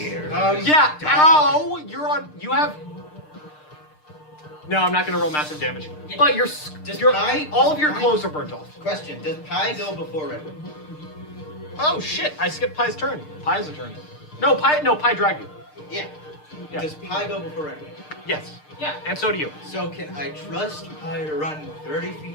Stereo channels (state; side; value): late; right; 6.6 ms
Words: ow! You have... No, I'm not gonna roll massive damage. But all of your clothes are burnt off. Question: does Pie go before Redwood? Oh shit, I skipped Pie's turn. Pie's a turn. No, Pie dragged you. Yeah. Yeah. Does Pie go before Redwood? Yes. Yeah. And so do you. So can I trust Pie to run 30